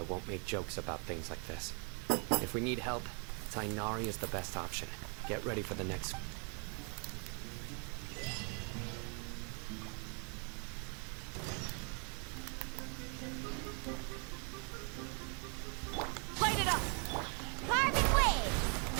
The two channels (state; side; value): quieter; left; 37.1 dB